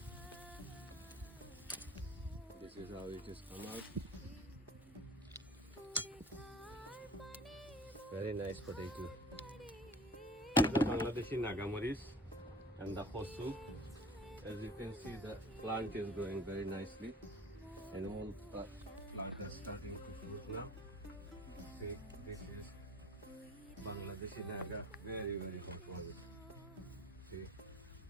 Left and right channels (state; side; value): normal; both; correlation 0.45